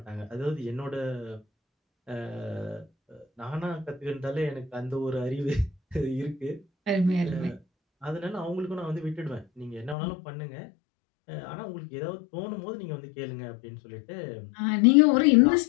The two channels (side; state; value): right; drops out; at 10.0 s